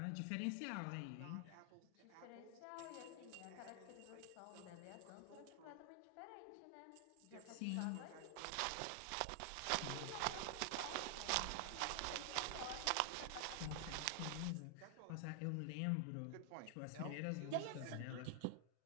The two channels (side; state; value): both; different; correlation 0.00